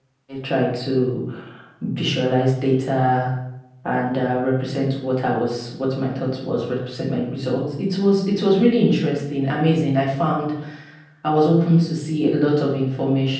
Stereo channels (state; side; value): identical; both; correlation 1.00